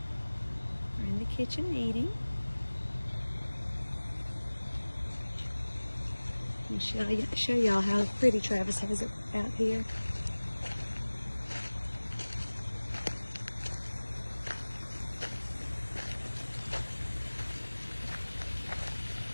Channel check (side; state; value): both; inverted; correlation -1.00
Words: are in the kitchen eating. Let me show y'all how pretty Travis has it out here.